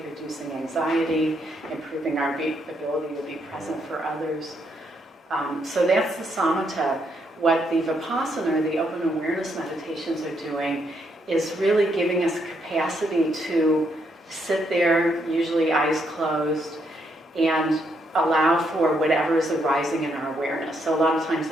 reducing anxiety, improving our ability to be present for others. So that's the samatha. What the vipassana, the open awareness meditations, are doing is really giving us capacity to sit there, usually eyes closed, and allow for whatever is arising in our awareness. So a lot of times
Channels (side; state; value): both; normal; correlation 0.76